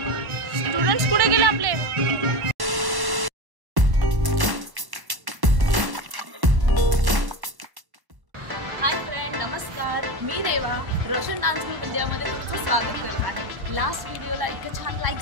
स्टुडंट्स कुठे गेले आपले? हाय फ्रेंड, नमस्कार. मी रेवा रोशन डान्स ग्रुप इंडियामध्ये तुमचं स्वागत करत आहे. लास्ट व्हिडिओला इतके छान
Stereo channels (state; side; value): late; left; 1.1 ms